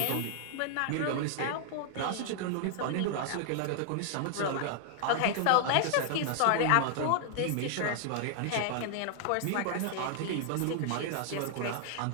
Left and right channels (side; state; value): both; different; correlation 0.00